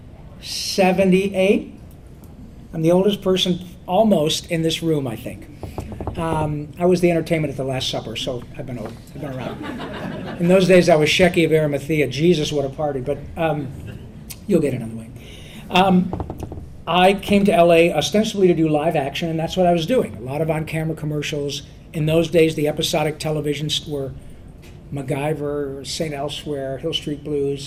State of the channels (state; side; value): identical; both; correlation 1.00